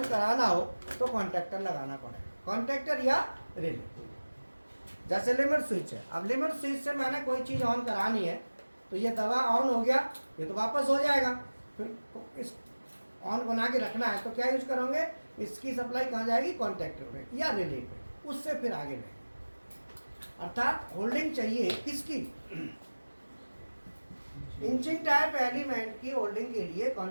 कराना हो तो कॉन्टैक्टर लगाना पड़ेगा, कॉन्टैक्टर या रिले। जैसे लिमिट स्विच है, अब लिमिट स्विच से मैंने कोई चीज़ ऑन करानी है, तो ये दवा ऑन हो गया, ये तो वापस हो जाएगा। फिर इस ऑन बना के रखना है तो क्या यूज करोगे? इसकी सप्लाई कहाँ जाएगी? कॉन्टैक्टर पे या रिले पे, उससे फिर आगे बढ़ेगी। अर्थात होल्डिंग चाहिए किसकी? इंचिंग टाइप एलिमेंट की होल्डिंग के लिए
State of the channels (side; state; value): both; inverted; correlation -1.00